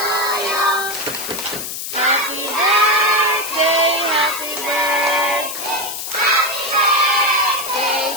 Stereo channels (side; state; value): left; noise; hiss, 6 dB below the sound